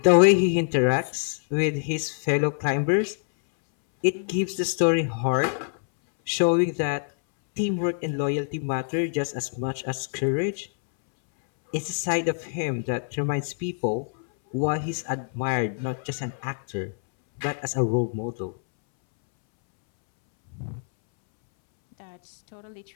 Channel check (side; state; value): right; silent; 61 dB below the other